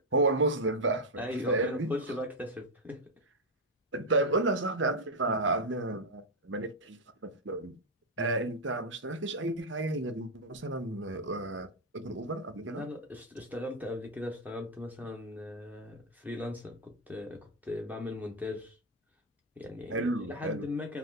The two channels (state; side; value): normal; both; correlation 0.00